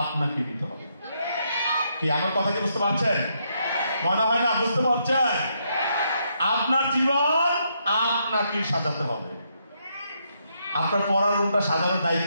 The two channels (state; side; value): inverted; both; correlation -0.77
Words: নিতে হবে। কি আমার কথা কি বুঝতে পারছেন? মনে হয় না বুঝতে পারছেন? আপনার জীবন আপনাকে সাজাতে হবে। আপনার পড়ার রুমটা সাজানোর